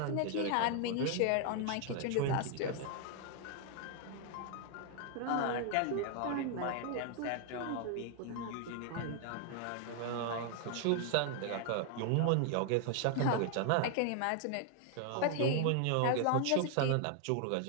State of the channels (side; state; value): both; different; correlation 0.00